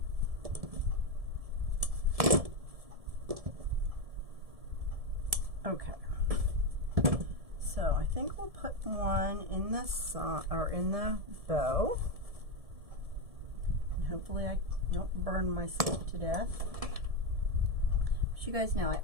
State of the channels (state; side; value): late; left; 1.7 ms